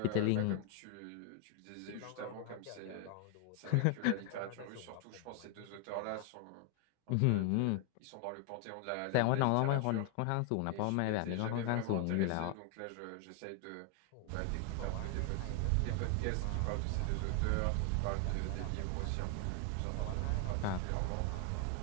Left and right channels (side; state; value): both; different; correlation 0.00